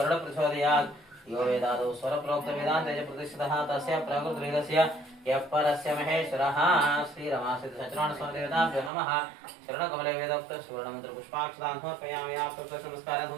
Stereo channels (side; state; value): left; drops out; at 8.9 s